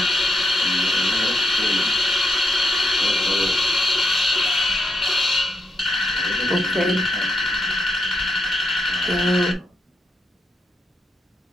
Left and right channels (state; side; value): normal; both; correlation 0.81